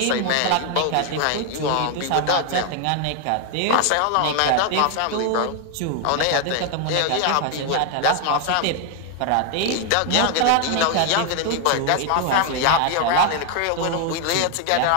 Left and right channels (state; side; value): different; both; correlation 0.00